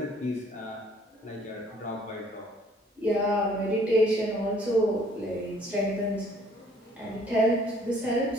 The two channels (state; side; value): normal; both; correlation 0.59